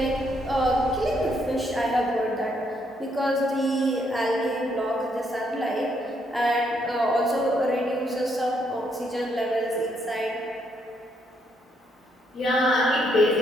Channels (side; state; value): both; normal; correlation 0.74